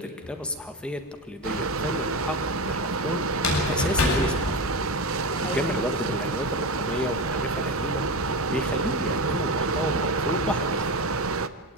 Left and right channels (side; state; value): both; normal; correlation 0.20